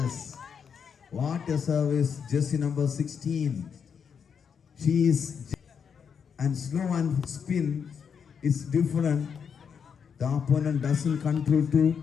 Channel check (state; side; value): quieter; right; 6.9 dB